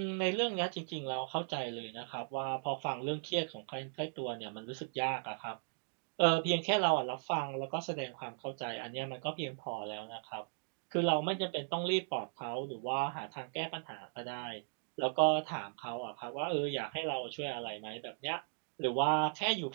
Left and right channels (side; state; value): left; silent; digital silence